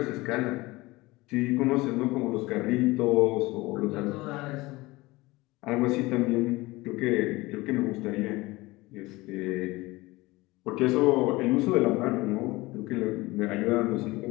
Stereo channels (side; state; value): right; quieter; 21.0 dB